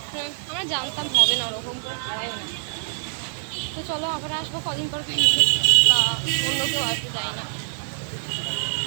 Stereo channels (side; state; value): left; silent; digital silence